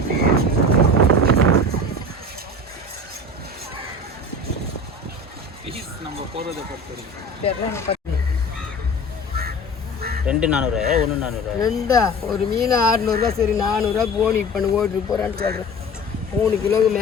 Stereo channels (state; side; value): normal; both; correlation 0.36